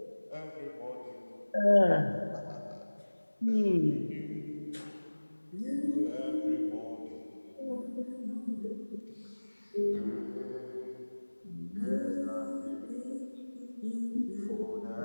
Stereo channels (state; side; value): inverted; both; correlation -1.00